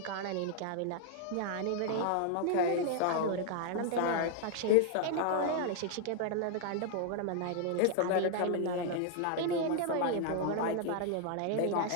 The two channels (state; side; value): different; both; correlation -0.01